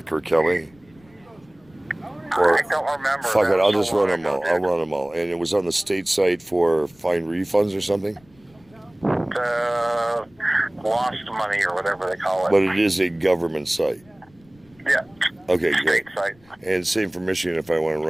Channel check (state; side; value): noise; left; rumble, 30 dB below the sound